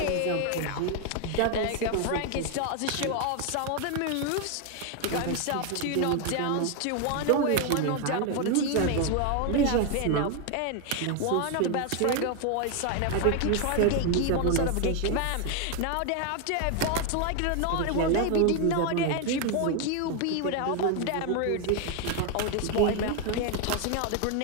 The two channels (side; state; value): both; different; correlation 0.01